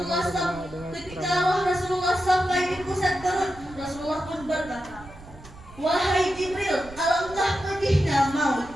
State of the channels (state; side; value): noise; right; rumble, 18 dB below the sound